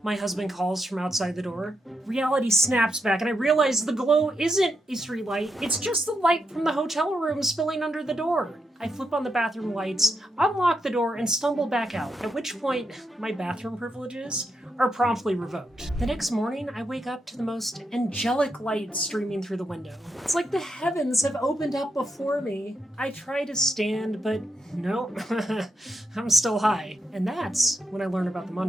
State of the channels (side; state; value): both; normal; correlation 0.84